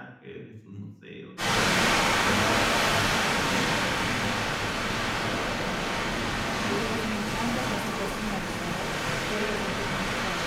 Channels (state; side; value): identical; both; correlation 1.00